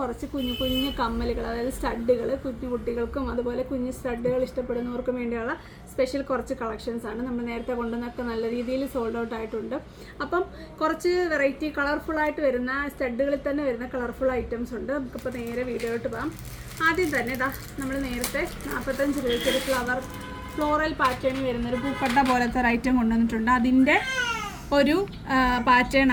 കുഞ്ഞു കുഞ്ഞു കമ്മലുകൾ, അതായത് സ്റ്റഡുകൾ, കുഞ്ഞു കുട്ടികൾക്കും അതുപോലെ കുഞ്ഞു സ്റ്റഡുകൾ ഇഷ്ടപ്പെടുന്നവർക്കും വേണ്ടിയുള്ള സ്പെഷ്യൽ കുറച്ച് കളക്ഷൻസാണ്. നമ്മൾ നേരത്തെ കൊണ്ടുവന്നൊക്കെ നല്ല രീതിയിൽ സോൾഡ് ഔട്ട് ആയിട്ടുണ്ട്. അപ്പം കുറച്ച് വെറൈറ്റി കളർഫുള്ളായിട്ട് വരുന്ന സ്റ്റഡുകളിൽ തന്നെ വരുന്ന കളർഫുൾ ഐറ്റംസ് ഉണ്ട്. നമുക്കിപ്പോൾ നേരെ വീഡിയോയിലോട്ട് പോകാം. ആദ്യം തന്നെ ഇതാ നമ്മൾ നേരത്തെ 45 രൂപയ്ക്കൊരു ഫ്ലോറൽ പാറ്റേണിൽ വരുന്നൊരു പൂക്കട്ട പോലത്തെ ഒരു ഐറ്റം കൊണ്ടുവന്നിട്ടുണ്ട്. അതിൻ്റെ ഒരു പാറ്റേൺ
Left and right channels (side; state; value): both; identical; correlation 1.00